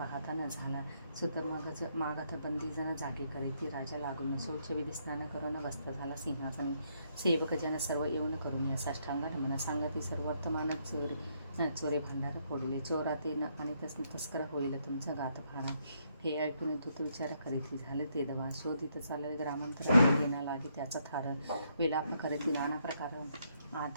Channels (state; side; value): inverted; both; correlation -0.74